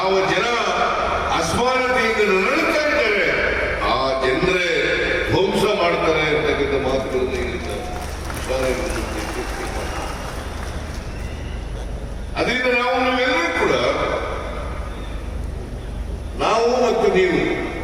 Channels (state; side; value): identical; both; correlation 1.00